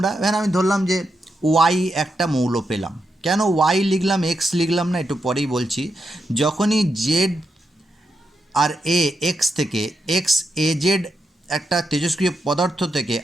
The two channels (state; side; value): normal; both; correlation 0.85